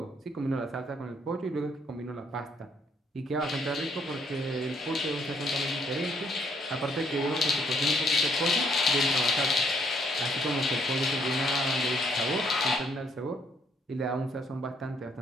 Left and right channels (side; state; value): both; normal; correlation 0.69